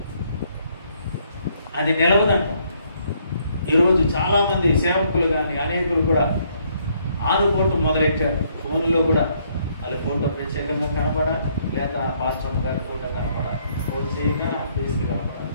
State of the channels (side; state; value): both; inverted; correlation -0.69